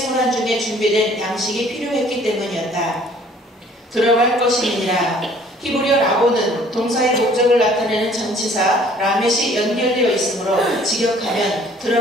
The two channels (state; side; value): normal; both; correlation 0.55